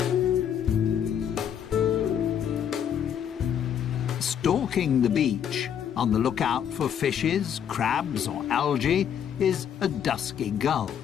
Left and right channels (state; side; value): quieter; right; 8.8 dB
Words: Stalking the beach, on the lookout for fishes, crabs or algae, is a dusky gull.